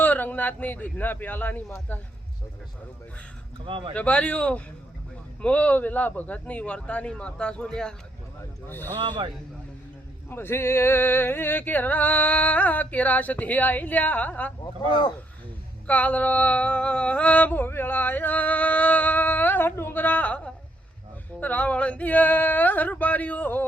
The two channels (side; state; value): both; normal; correlation 0.73